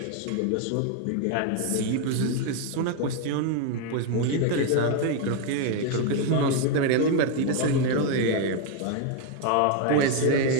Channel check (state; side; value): different; both; correlation 0.01